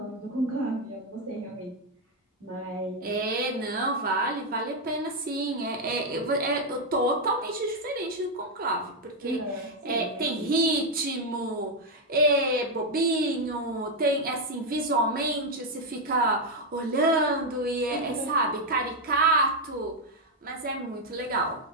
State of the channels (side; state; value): both; normal; correlation 0.02